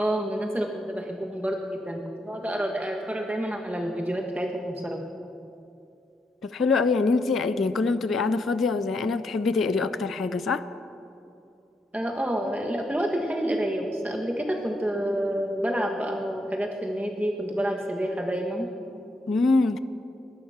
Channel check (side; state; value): both; normal; correlation 0.79